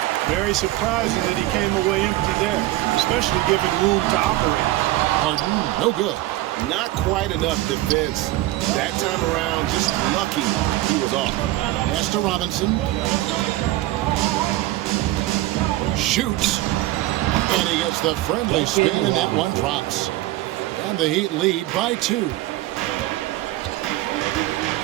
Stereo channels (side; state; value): left; quieter; 16.5 dB